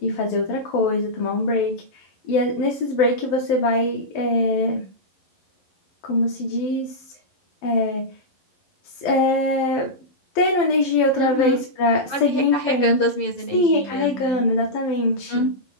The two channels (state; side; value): late; right; 12 ms